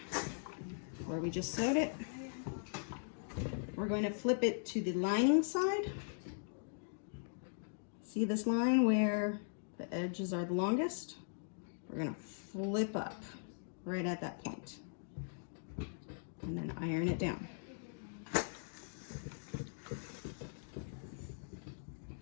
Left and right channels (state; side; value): silent; right; digital silence